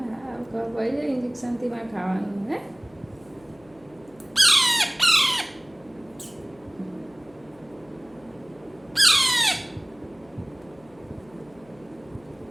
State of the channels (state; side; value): noise; left; hum, 27 dB below the sound